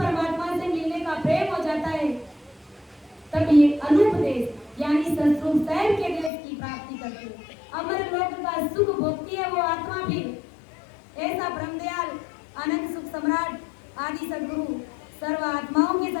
से मिलने का प्रेम हो जाता है, तब ये अनूप देश यानी सतरूप साहब के देश की प्राप्ति करते हैं। अमर लोक का सुख भोगती है वो आत्मा भी। ऐसा ब्रह्मदयाल अनंत सुख सम्राट आदि सदगुरु, सर्व आत्माओं के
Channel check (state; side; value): drops out; right; at 6.3 s